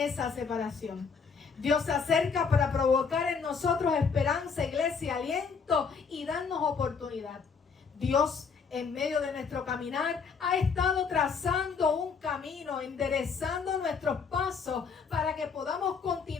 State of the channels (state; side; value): quieter; right; 5.6 dB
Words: separación. Dios se acerca para provocar en nosotros esperanza, iglesia, aliento y darnos oportunidad. Dios, en medio de nuestro caminar, ha estado trazando un camino, enderezando nuestros pasos para que podamos